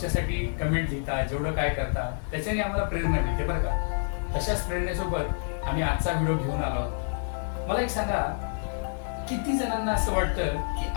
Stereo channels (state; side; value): silent; right; digital silence